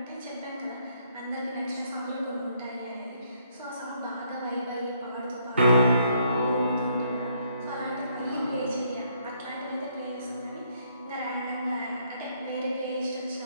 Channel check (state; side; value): inverted; both; correlation -0.70